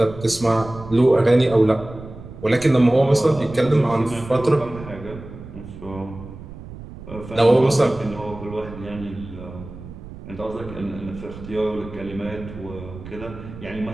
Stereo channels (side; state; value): right; noise; rumble, 14 dB below the sound